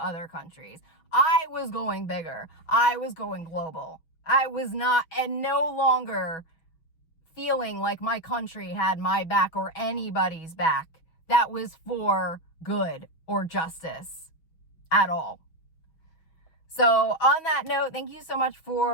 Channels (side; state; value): right; late; 6.2 ms